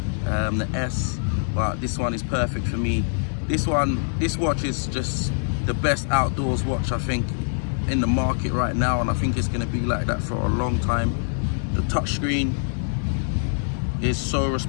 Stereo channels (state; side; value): silent; right; digital silence